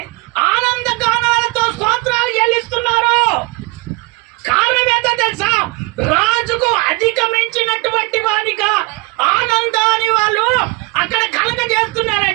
ఆనంద గానాలతో స్తోత్రాలు చెల్లిస్తున్నారు. కారణం ఏంటో తెలుసా? రాజుకు అధిగమించినటువంటి వానిగా ఆనందాన్ని వాళ్ళు అక్కడ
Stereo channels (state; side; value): quieter; left; 27.1 dB